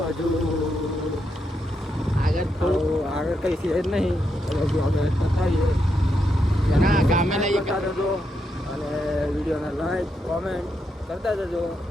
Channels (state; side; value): normal; both; correlation 0.82